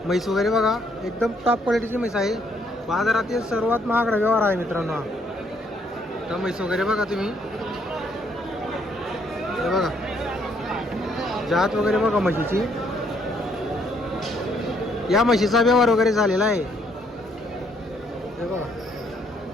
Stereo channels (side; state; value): both; normal; correlation 0.69